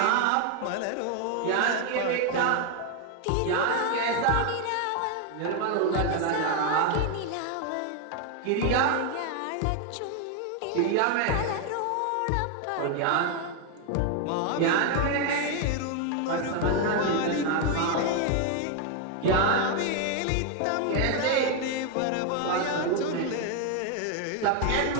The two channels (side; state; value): both; different; correlation 0.01